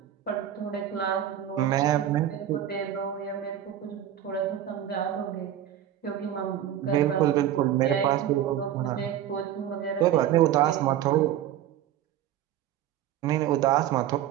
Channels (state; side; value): quieter; left; 11.3 dB